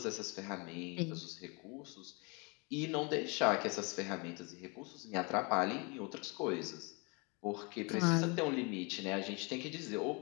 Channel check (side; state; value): right; quieter; 30.8 dB